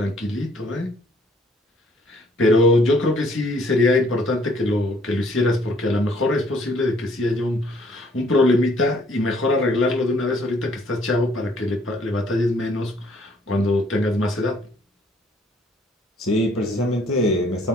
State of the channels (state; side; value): normal; both; correlation 0.62